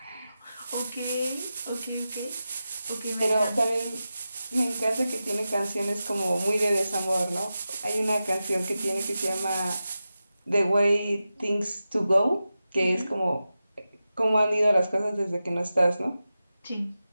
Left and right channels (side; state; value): both; inverted; correlation -0.92